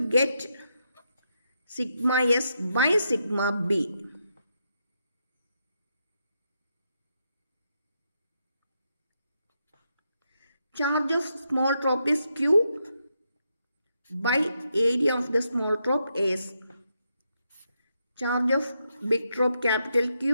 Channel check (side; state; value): both; inverted; correlation -0.82